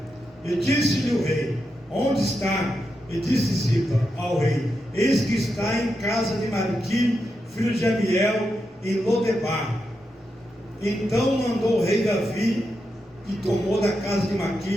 E disse-lhe o rei: onde está? E disse Ziba ao rei: eis que está em casa de Marqui, filho de Amiel, em Lodebar. Então mandou o rei Davi, e tomou da casa de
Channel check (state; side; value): normal; both; correlation 0.86